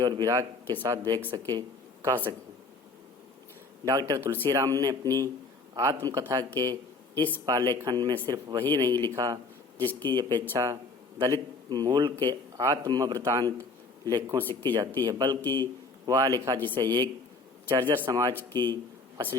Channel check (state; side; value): quieter; right; 3.9 dB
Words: और विराग के साथ कह सके। डॉक्टर तुलसीराम ने अपनी आत्मकथा के इस पालेखन में सिर्फ वही नहीं लिखा जिसकी अपेक्षा दलित मूल के आत्मवृतांत लेखों से की जाती है, बल्कि वह लिखा जिसे एक जर्जर समाज की